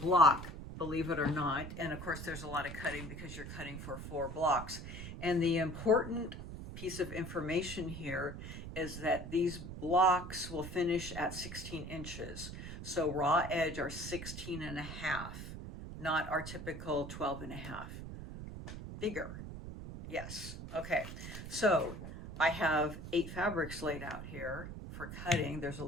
believe it or not. And of course, there's a lot of cutting because you're cutting for 4 blocks. And the important piece of information here is that these blocks will finish at 16 inches. So raw edge are 16 and a half, not our typical 12 and a half. Bigger. Yes. Okay. So I have 8 fabrics laid out here for cutting. There's a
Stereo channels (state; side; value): noise; right; rumble, 9 dB below the sound